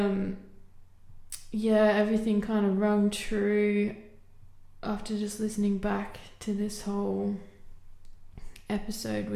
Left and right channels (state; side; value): identical; both; correlation 1.00